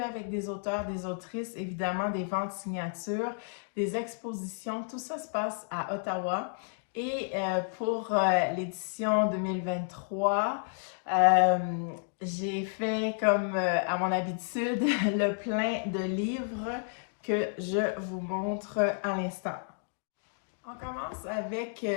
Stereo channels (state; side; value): silent; right; digital silence